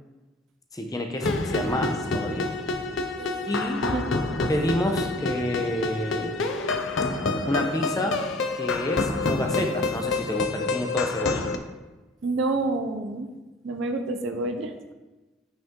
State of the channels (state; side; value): normal; both; correlation 0.46